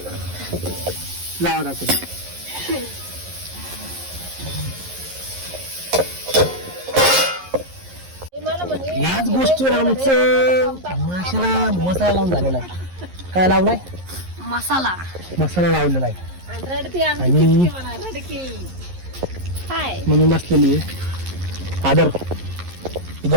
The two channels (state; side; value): late; left; 11 ms